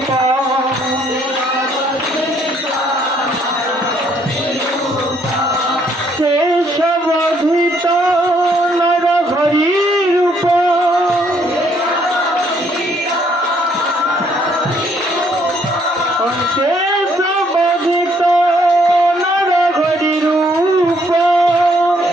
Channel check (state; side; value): normal; both; correlation 0.67